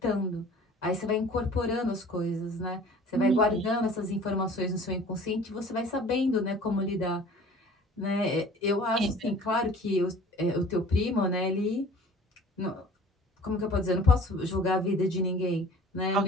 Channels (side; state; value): both; normal; correlation 0.47